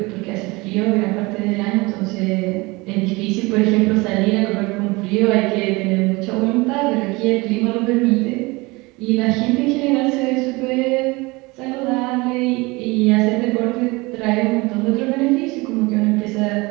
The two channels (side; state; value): left; quieter; 23.9 dB